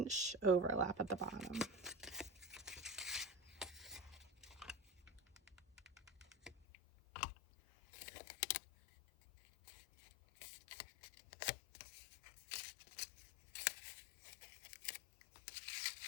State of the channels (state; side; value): drops out; right; at 6.6 s